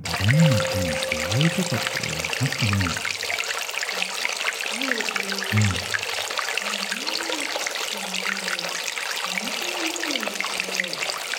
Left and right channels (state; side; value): identical; both; correlation 1.00